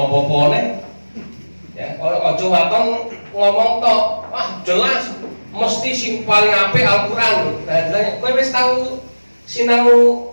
ya, ojo waton ngomong tok, jelas mesti sing paling apik Al-Quran. Nah, jelasnya kowe wis tahu sinau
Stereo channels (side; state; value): both; inverted; correlation -1.00